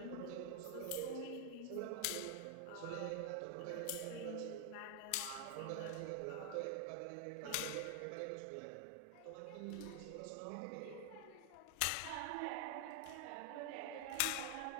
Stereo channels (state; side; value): different; both; correlation 0.00